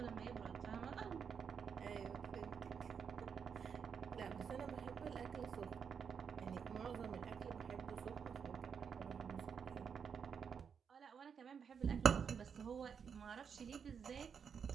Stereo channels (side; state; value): left; quieter; 6.8 dB